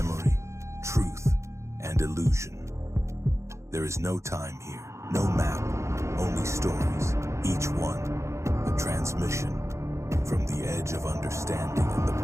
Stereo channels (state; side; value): late; left; 0.14 ms